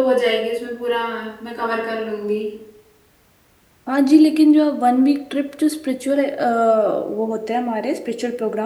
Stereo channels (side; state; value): both; identical; correlation 1.00